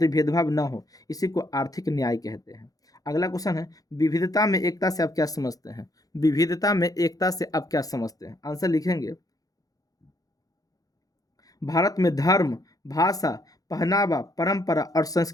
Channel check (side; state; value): right; late; 0.17 ms